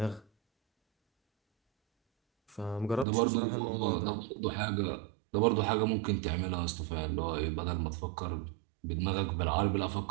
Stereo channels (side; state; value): left; drops out; at 3.1 s